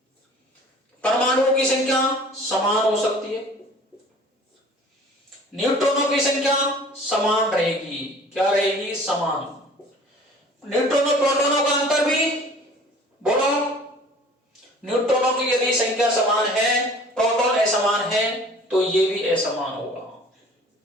परमाणुओं की संख्या समान हो सकती है, न्यूट्रॉनों की संख्या समान रहेगी, क्या रहेगी, समान। न्यूट्रॉन और प्रोटॉनों का अंतर भी बोलो, न्यूट्रॉनों की यदि संख्या समान है, प्रोटॉन असमान है, तो ये भी असमान होगा।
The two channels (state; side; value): normal; both; correlation 0.48